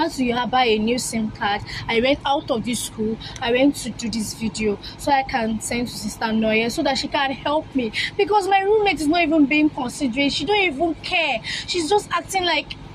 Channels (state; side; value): identical; both; correlation 1.00